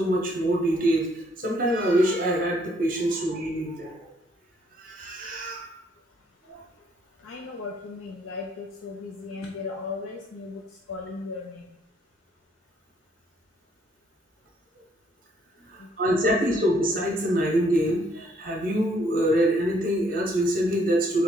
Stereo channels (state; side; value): normal; both; correlation 0.67